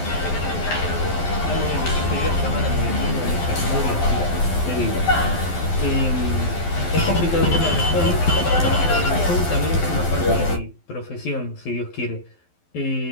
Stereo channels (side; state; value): right; late; 12 ms